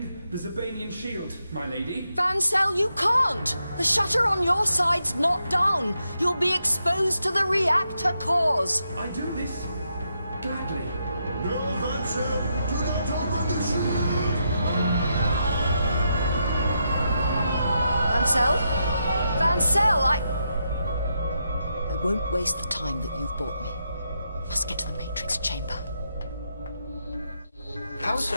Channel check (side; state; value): both; inverted; correlation -0.82